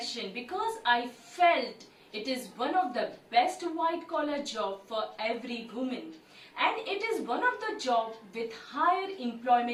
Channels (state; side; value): identical; both; correlation 1.00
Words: because I felt it is one of the best white collar job for every woman, and it is one of the job with higher